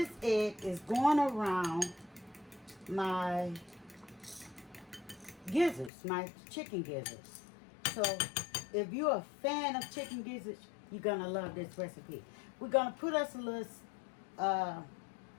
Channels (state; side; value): drops out; right; at 5.9 s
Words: egg is going around my gizzards, my chicken gizzards. So if you're a fan of chicken gizzards, you're gonna love this recipe. We're gonna put us a little